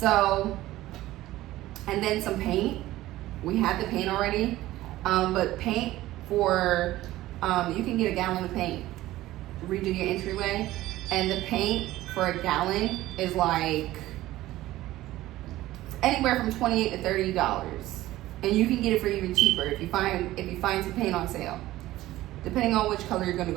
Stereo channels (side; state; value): left; quieter; 16.1 dB